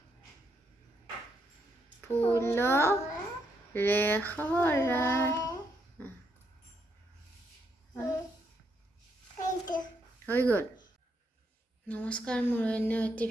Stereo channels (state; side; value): normal; both; correlation 0.77